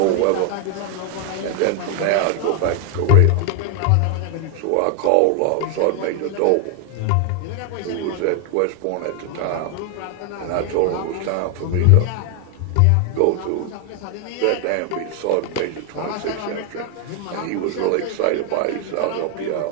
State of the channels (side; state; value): both; different; correlation 0.01